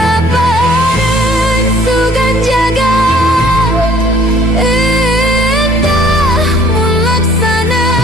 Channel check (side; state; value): both; normal; correlation 0.56